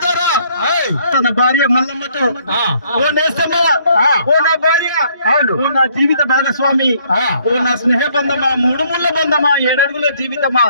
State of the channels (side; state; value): both; inverted; correlation -0.65